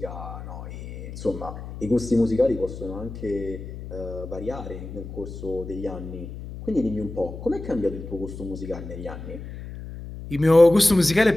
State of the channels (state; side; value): noise; left; hum, 11 dB below the sound